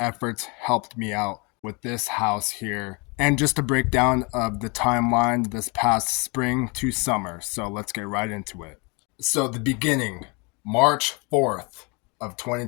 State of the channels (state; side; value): quieter; right; 30.4 dB